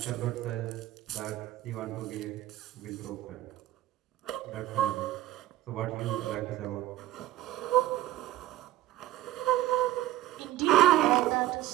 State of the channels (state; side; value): quieter; left; 14.7 dB